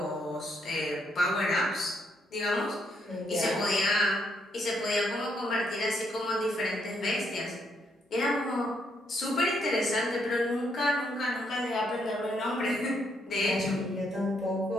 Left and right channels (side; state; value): both; normal; correlation 0.75